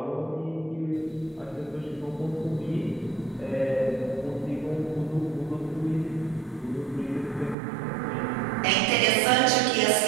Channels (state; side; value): drops out; left; at 7.6 s